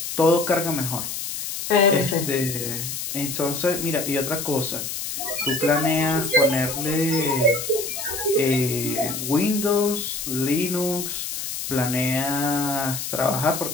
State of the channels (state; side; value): noise; left; hiss, 5 dB below the sound